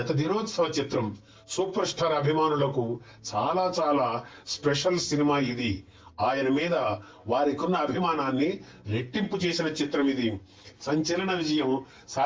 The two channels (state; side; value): identical; both; correlation 1.00